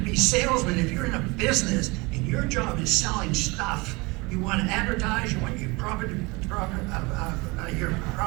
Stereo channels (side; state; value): left; quieter; 25.3 dB